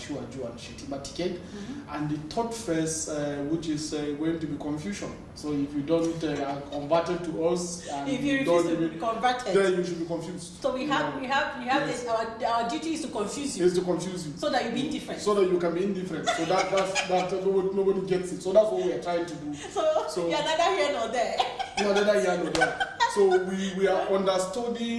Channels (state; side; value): identical; both; correlation 1.00